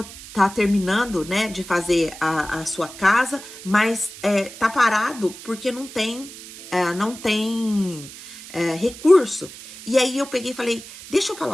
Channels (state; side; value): noise; right; hiss, 15 dB below the sound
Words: está terminando, né, de fazer a sua casa, mas tá parado porque não tem recurso. E aí eu peguei e falei, deixa eu falar